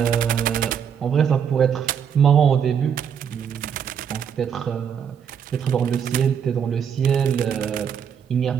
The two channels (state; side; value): quieter; left; 7.8 dB